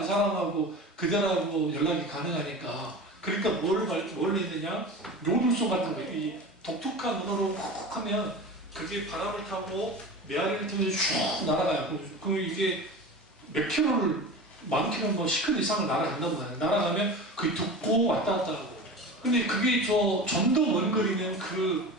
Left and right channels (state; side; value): normal; both; correlation 0.32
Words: 사람하고 그들하고 연락이 가능하니까. 그러니까 뭘 했느냐? 요들송 같은 거, 이 독특한 언어로 훅 하면 그게 바람을 타고 메아리를 타면서 쭉 날아가요. 이게 몇 킬로를, 만 킬로, 뭐 10킬로 이상을 날아간다고 하요. 날아가면 그게 듣고 왔다 갔다 하고. 근데 그게 좀 더 먼 거리는